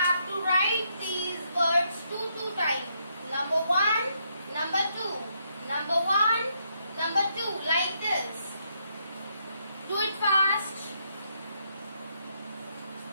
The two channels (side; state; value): both; inverted; correlation -0.76